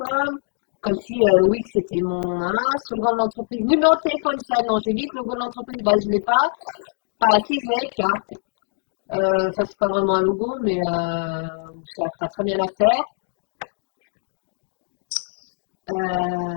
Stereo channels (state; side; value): silent; right; digital silence